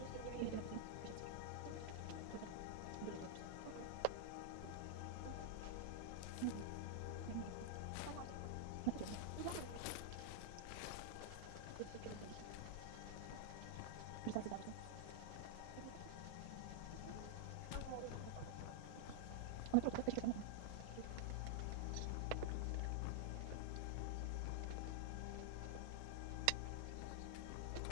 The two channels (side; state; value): both; different; correlation -0.01